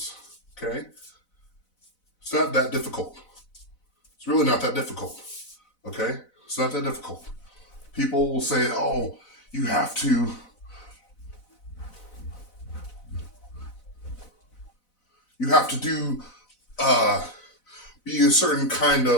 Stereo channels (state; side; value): late; right; 4.0 ms